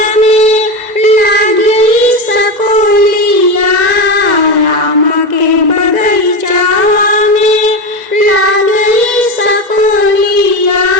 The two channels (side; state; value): left; late; 2.0 ms